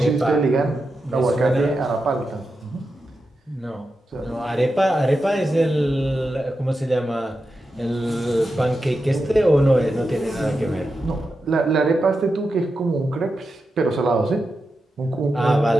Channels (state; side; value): normal; both; correlation 0.89